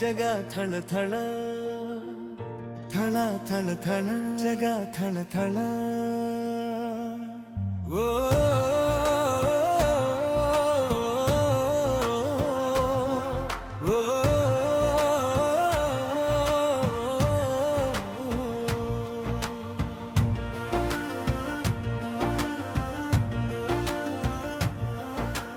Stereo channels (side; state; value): both; identical; correlation 1.00